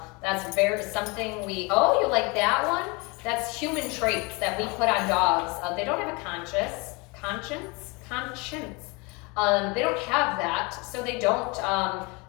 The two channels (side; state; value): right; quieter; 27.9 dB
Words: That's something oh, you like that one? That's human traits that we put on dogs. They don't have a conscience. They don't have that, so they don't,